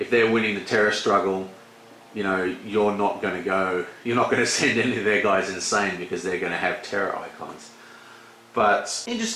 they're winning the terror struggle, you're not going to send any of their guys insane because they're going to have terror icons. But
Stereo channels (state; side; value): identical; both; correlation 1.00